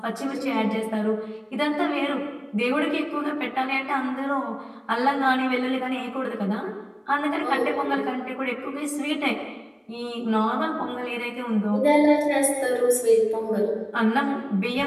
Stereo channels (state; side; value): identical; both; correlation 1.00